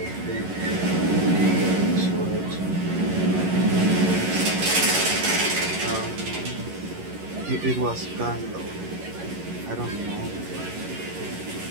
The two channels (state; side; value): late; left; 11 ms